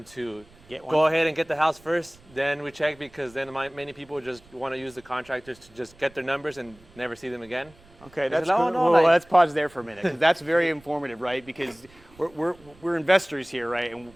to Get one. go ahead and get the house first. Then we check, because then many people just want to use the contractors to just get their numbers and never see them again. Okay, that's said, "Oh, cool. no, Well, like-" let's pause there for a minute, because that's very informative, right? Because we're investors here, right? And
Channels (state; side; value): noise; right; rumble, 26 dB below the sound